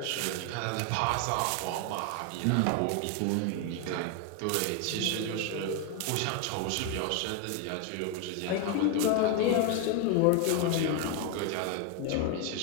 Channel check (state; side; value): different; both; correlation 0.01